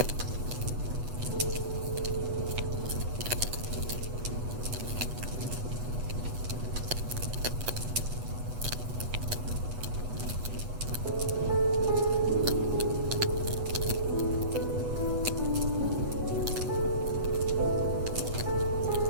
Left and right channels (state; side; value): late; left; 8.2 ms